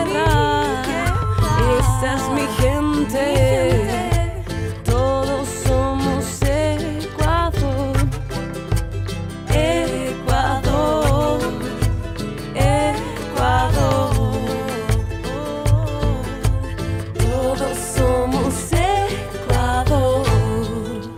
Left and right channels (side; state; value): both; identical; correlation 1.00